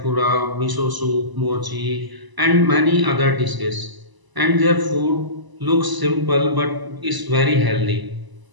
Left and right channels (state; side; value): late; left; 1.0 ms